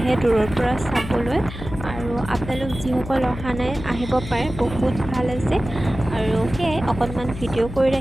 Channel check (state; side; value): noise; left; hum, 10 dB below the sound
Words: দূৰৰ পৰা চাবলৈ। আৰু আপোনালোক যিসকল অহা নাই আহিব পাৰে, বহুত ভাল আছে। আৰু সেয়াই অকণমান ভিডিঅ' কৰি